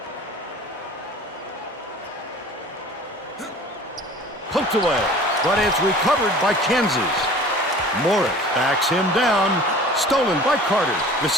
Poked away, but it's recovered by Kansas. Morris backs him down. Stolen by Carter. The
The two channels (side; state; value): both; normal; correlation 0.44